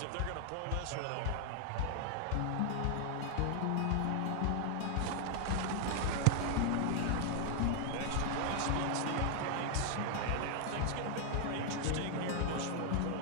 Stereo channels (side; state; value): both; different; correlation 0.00